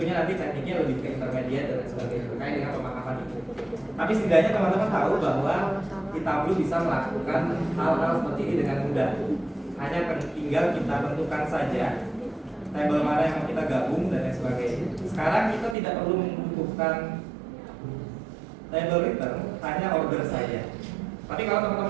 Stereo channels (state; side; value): drops out; left; at 15.8 s